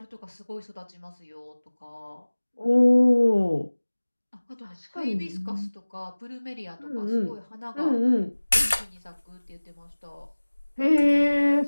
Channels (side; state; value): both; inverted; correlation -1.00